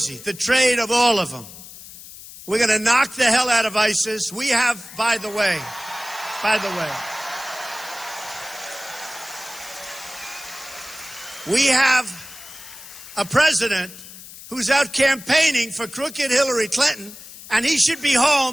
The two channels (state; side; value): noise; left; hiss, 16 dB below the sound